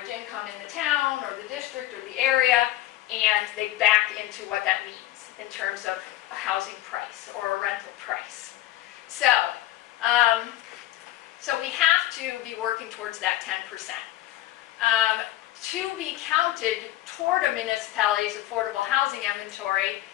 income in the town or the district or the area, and they back into what that means in terms of a housing price or a rental price. So we have to be working towards that 10%. To be counted toward a municipality's affordable housing inventory,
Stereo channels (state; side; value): quieter; right; 14.9 dB